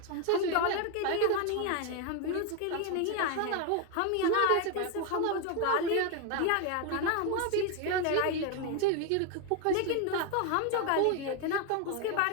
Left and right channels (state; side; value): different; both; correlation 0.01